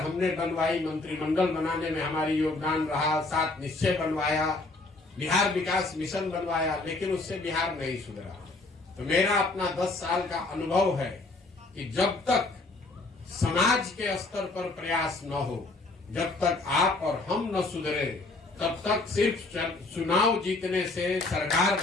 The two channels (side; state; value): right; quieter; 3.3 dB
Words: बनवाई, मंत्रिमंडल बनाने में हमारी योगदान रहा, 7 निश्चय बनवाया, बिहार विकास मिशन बनवाया, लेकिन उससे बिहार नहीं सुधरा। तो मेरा अपना 10 साल का अनुभव है कि जब तक समाज के स्तर पर प्रयास न हो, जब तक आप और हम न सुधरे, तब तक सिर्फ चुनाव जीतने से, सरकार